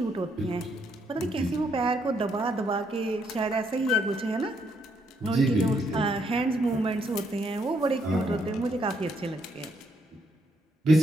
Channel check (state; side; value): normal; both; correlation 0.74